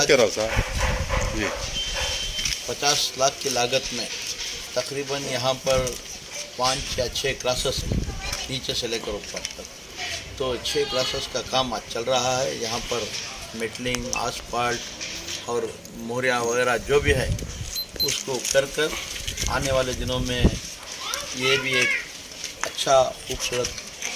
50 लाख की लागत में तकरीबन यहाँ पर 5 या 6 क्लासेस नीचे से लेकर ऊपर तक, तो 6 क्लासेस का काम आज चल रहा है। यहाँ पर मेटलिंग, आसफाल्ट और मोहरिया वगैरह जो भी है उसको कर आने वाले दिनों में ये भी एक अच्छा खूबसूरत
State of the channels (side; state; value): both; identical; correlation 1.00